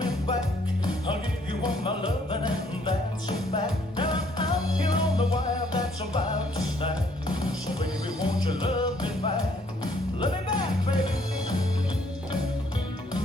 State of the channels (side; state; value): both; normal; correlation 0.65